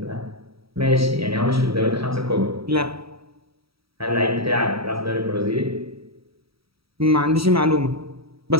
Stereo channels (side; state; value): left; late; 0.76 ms